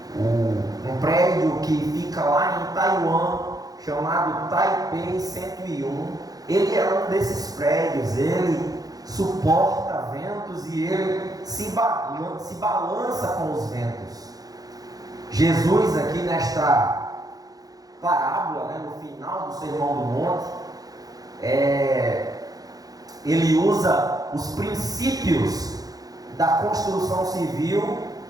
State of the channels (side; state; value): left; late; 0.18 ms